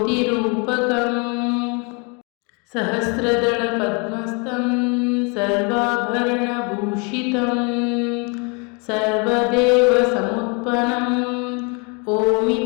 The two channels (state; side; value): quieter; right; 33.0 dB